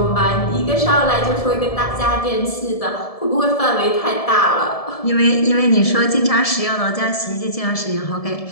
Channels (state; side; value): late; right; 1.7 ms